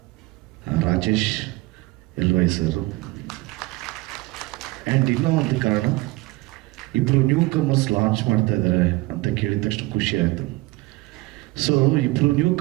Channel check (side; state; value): left; quieter; 21.8 dB